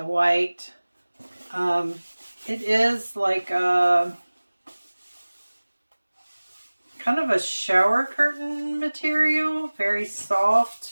white. It is like a kind of a shower curtain material, very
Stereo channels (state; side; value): inverted; both; correlation -1.00